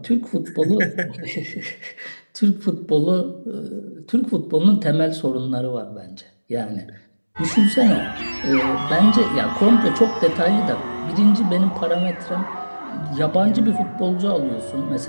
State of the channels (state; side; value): inverted; both; correlation -1.00